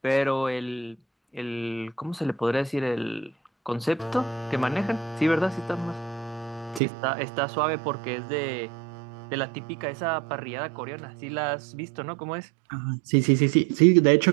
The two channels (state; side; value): drops out; left; at 6.8 s